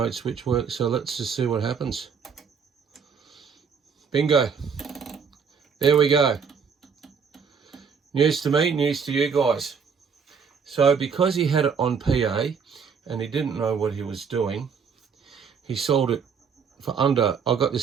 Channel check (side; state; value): left; quieter; 6.2 dB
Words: switch works. So let's just see what happens. Bingo. There we go. News to me, news to you guys. So because he had it on PA and he didn't know what he was doing, he sold it for under, I got